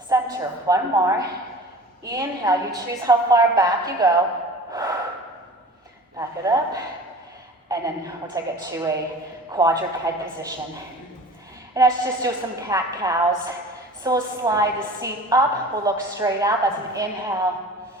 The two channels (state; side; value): normal; both; correlation 0.41